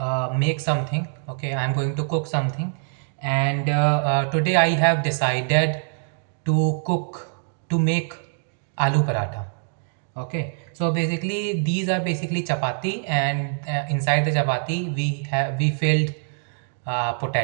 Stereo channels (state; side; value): silent; left; digital silence